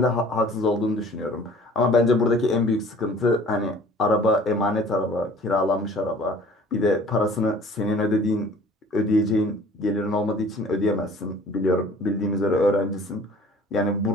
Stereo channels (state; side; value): normal; both; correlation 0.49